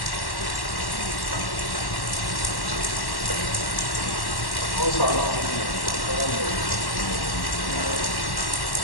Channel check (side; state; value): right; late; 1.1 ms